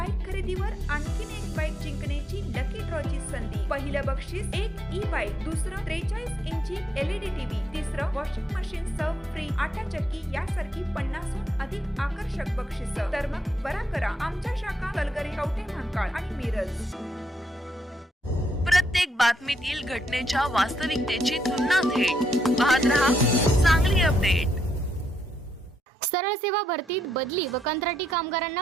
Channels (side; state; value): both; normal; correlation 0.78